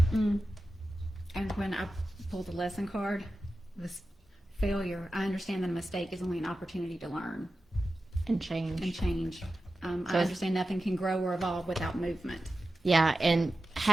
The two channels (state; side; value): normal; both; correlation 0.93